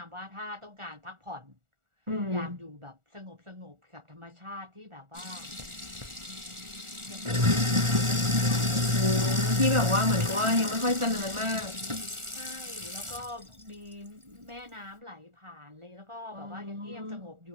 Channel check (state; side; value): late; left; 1.4 ms